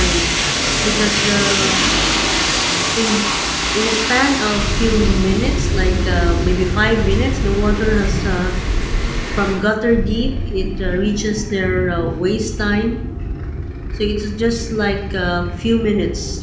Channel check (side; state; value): both; identical; correlation 1.00